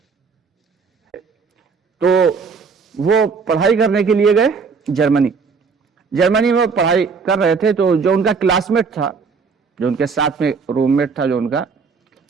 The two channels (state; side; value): quieter; left; 5.2 dB